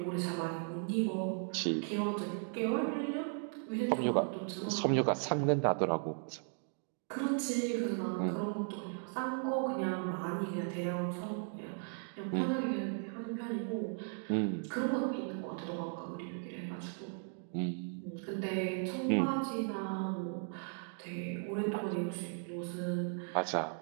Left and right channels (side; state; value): left; silent; 53 dB below the other